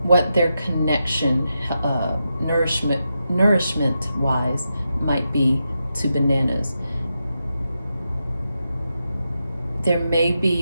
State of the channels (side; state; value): both; inverted; correlation -0.87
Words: what their connection, nourishment-wise, might be to bananas. There may